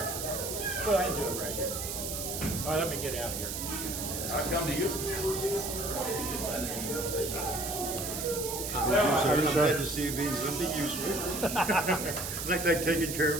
Well, I can do it right here. All right, let me get out here. I'll come to you. I'm glad to see you being something useful. It's like they're taking care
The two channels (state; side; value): noise; right; hiss, 4 dB below the sound